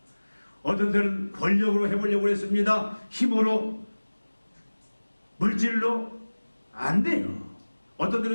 어떤 때는 권력으로 해보려고 했습니다. 힘으로, 물질로 안 돼요. 어떤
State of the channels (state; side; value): inverted; both; correlation -1.00